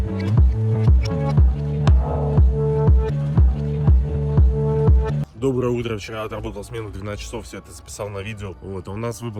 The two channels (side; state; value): both; identical; correlation 1.00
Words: Доброе утро, вчера отработал смену 12 часов, все это записал на видео. Вот, а у нас